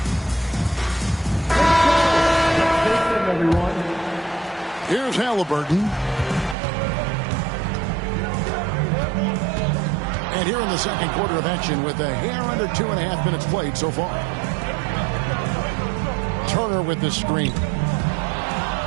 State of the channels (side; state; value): left; drops out; at 6.6 s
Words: Here's Halliburton. And here in the second quarter of action with a hair under 2.5 minutes played so far. Turner with the screen.